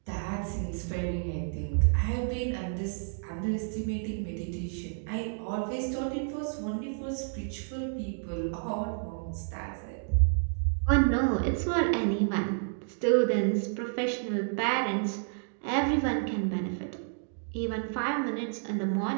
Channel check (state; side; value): silent; left; digital silence